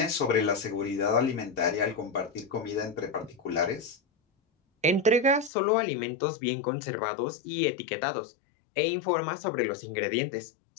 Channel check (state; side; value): drops out; right; at 5.5 s